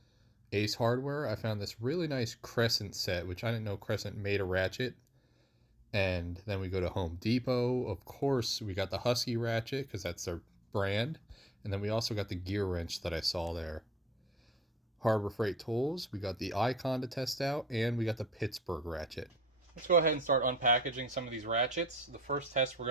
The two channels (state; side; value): normal; both; correlation 0.63